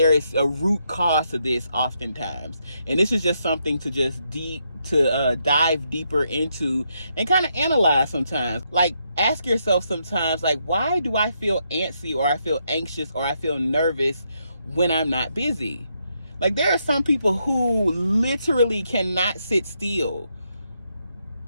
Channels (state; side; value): inverted; both; correlation -0.79